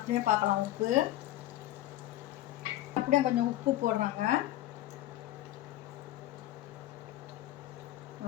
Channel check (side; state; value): right; quieter; 14.5 dB